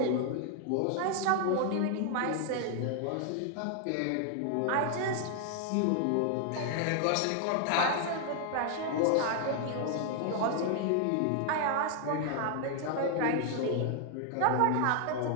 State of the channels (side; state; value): both; different; correlation 0.00